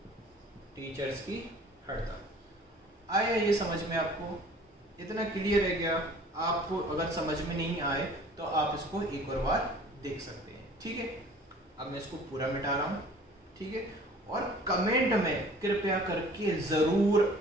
टीचर्स की हड़ताल। आया ये समझ में आपको? इतना क्लियर है क्या? आपको अगर समझ में नहीं आए तो आप इसको एक और बार देख सकते हैं। ठीक है, अब मैं इसको पूरा मिटा रहा हूं। ठीक है, और कमेंट में कृपया करके जरूर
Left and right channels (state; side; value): normal; both; correlation 0.49